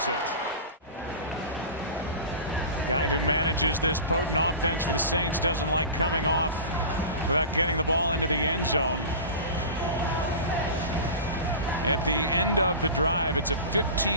it. Guy who manages this potent offense for the Saints doesn't like coming off without getting the ball into the end zone. At the end of the drive, it's a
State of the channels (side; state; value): both; inverted; correlation -0.32